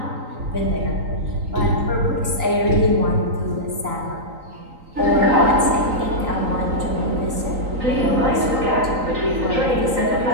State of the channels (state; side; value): late; left; 3.9 ms